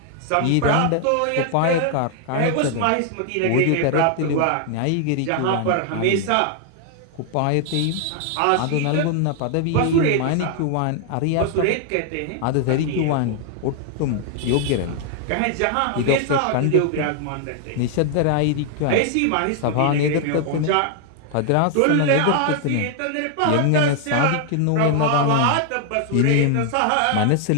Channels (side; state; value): both; different; correlation 0.00